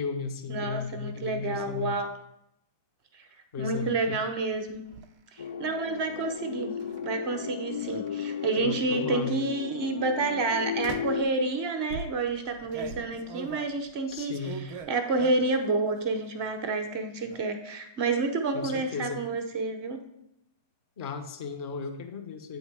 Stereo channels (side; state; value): left; late; 2.0 ms